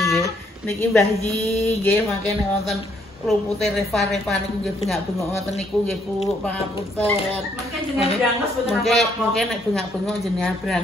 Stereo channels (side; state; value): both; normal; correlation 0.70